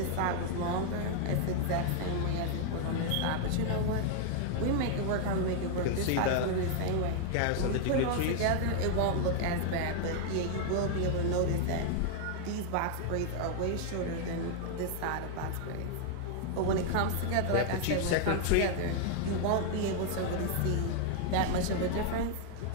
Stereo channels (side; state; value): both; different; correlation 0.00